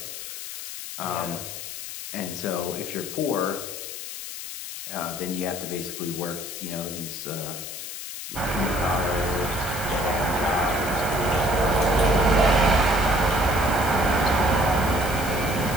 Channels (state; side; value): noise; left; hiss, 8 dB below the sound